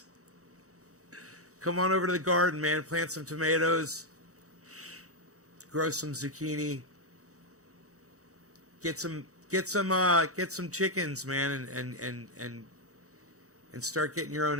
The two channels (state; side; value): late; left; 0.65 ms